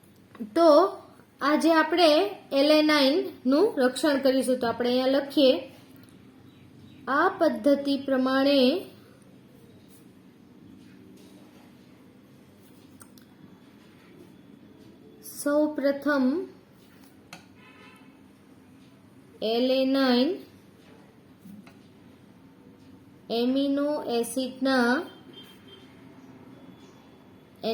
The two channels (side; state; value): both; identical; correlation 1.00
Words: તો આજે આપણે એલેનાઇન નું રક્ષણ કરીશું. તો આપણે અહીંયા લખીએ, આ પદ્ધતિ પ્રમાણે સૌપ્રથમ એલેનાઇન એમિનો એસિડના